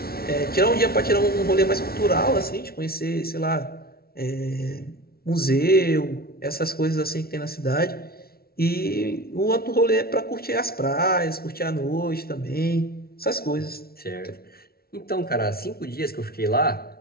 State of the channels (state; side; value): late; right; 0.44 ms